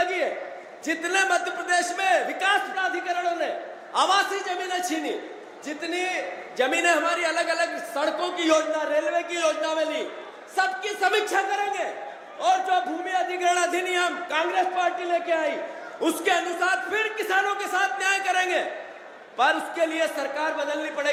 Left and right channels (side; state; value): both; identical; correlation 1.00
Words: है। जितने मध्य प्रदेश में विकास प्राधिकरणों ने आवासीय जमीनें छीनी, जितनी जमीनें हमारी अलग अलग सड़कों की योजना, रेलवे की योजना में ली, सबकी समीक्षा करेंगे और जो भूमि अधिग्रहण अधिनियम कांग्रेस पार्टी लेके आई उसके अनुसार फिर किसानों के साथ न्याय करेंगे। पर उसके लिए सरकार बदलनी